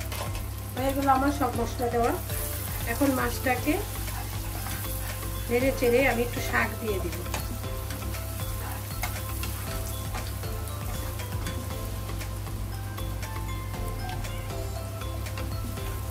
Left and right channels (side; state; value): both; identical; correlation 1.00